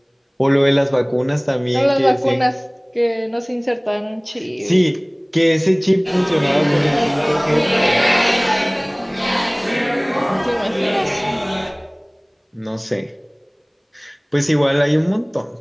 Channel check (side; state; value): both; identical; correlation 1.00